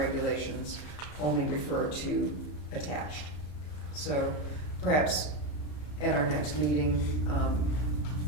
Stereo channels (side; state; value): right; late; 33 ms